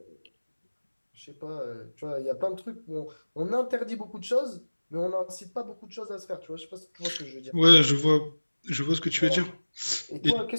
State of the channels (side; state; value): both; inverted; correlation -1.00